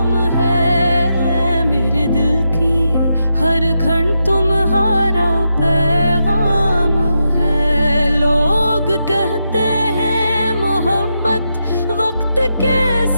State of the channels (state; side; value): inverted; both; correlation -0.85